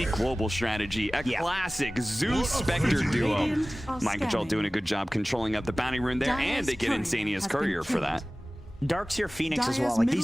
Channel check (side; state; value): both; normal; correlation 0.98